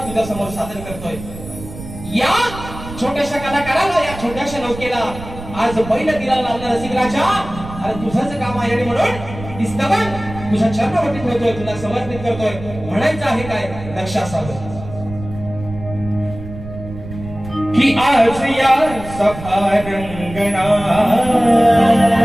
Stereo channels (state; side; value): noise; right; rumble, 13 dB below the sound